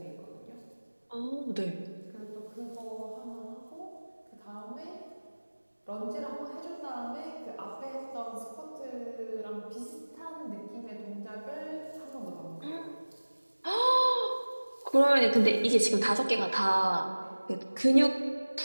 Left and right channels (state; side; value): inverted; both; correlation -1.00